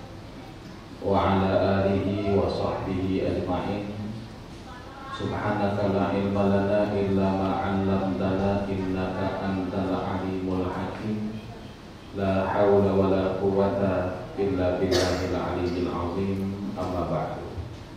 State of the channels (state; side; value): identical; both; correlation 1.00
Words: wa ala alihi wa sahbihi ajma'in. Subhanaka la ilma lana illa ma 'allamtana innaka antal alimul hakim. La haula wa la quwwata illa billahil aliyyil azim. Amma ba'du.